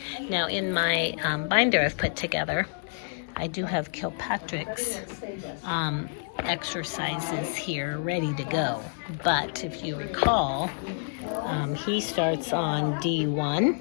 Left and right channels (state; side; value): silent; right; digital silence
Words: Now, in my binder I've put together, I do have Kilpatrick's exercises here ready to go. But if you recall, he starts on